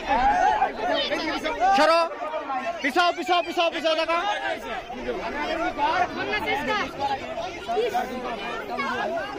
সরো পিছাও পিছাও পিছাও পিছাও দেখো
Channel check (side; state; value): both; identical; correlation 1.00